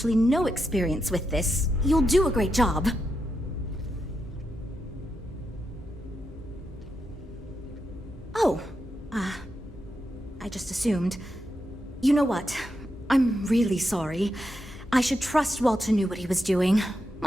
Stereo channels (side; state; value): both; normal; correlation 0.85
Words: no experience with this, you'll do a great job. Oh, I just assumed. You know what? I'm really sorry. I should trust Walter knew what he was doing.